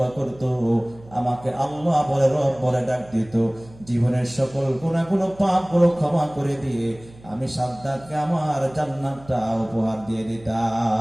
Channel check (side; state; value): right; noise; hum, 22 dB below the sound